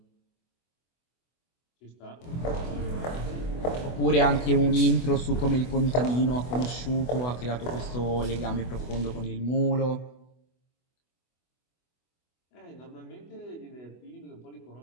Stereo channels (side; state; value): right; late; 24 ms